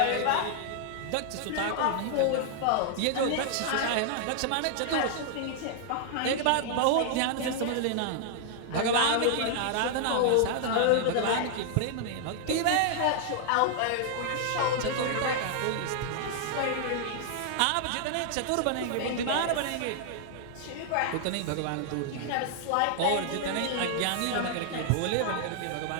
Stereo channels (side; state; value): both; different; correlation -0.01